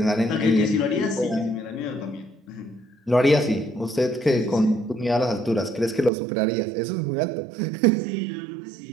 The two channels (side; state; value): left; drops out; at 6.1 s